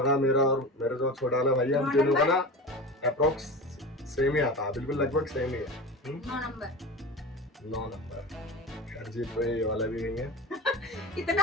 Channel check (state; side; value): normal; both; correlation 0.30